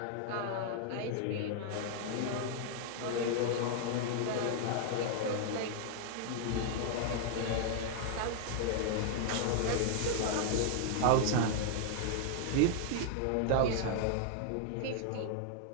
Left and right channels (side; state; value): both; different; correlation 0.00